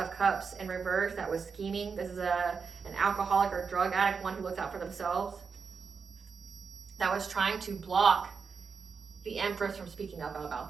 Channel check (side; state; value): left; quieter; 5.5 dB